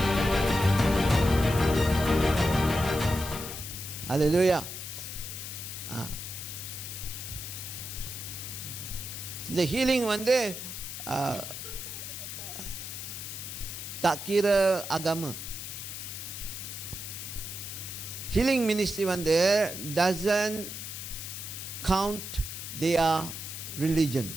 அல்லேலூயா. இந்த ஹீலிங் வந்து tak kira agama. Healing ministry வந்து doesn't count their religion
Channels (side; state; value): left; noise; hiss, 8 dB below the sound